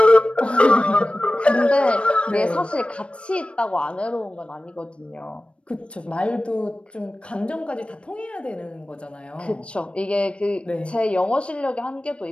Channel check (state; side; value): late; right; 0.059 ms